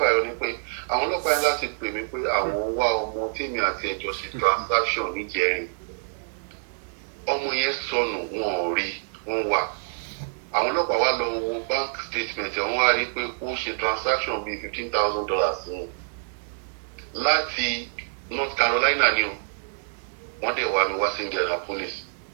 ni pé àwọn ọlọ́pàá yẹn láti pè mí pé àwọn wá ọmọ tèmi àti ẹjọ́ ṣe transaction níjẹrin ọmọ yẹn sọnù wọn ò rí wọn wà àwọn ọlọ́pàá wá lọ wo bank statement wọ́n wá rí pé ó ṣe transaction bíi $15,000 sí láti North Carolina ni o wọ́n dẹ̀ wá mi wá sí Indianapolis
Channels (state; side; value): silent; left; digital silence